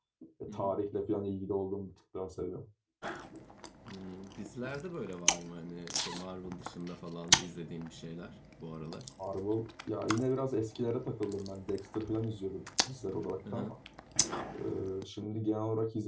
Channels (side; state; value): both; identical; correlation 1.00